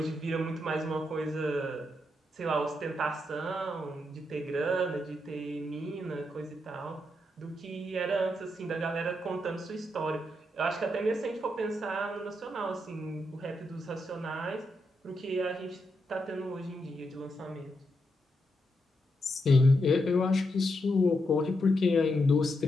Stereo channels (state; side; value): normal; both; correlation 0.82